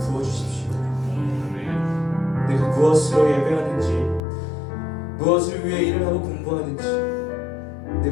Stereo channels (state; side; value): drops out; right; at 4.2 s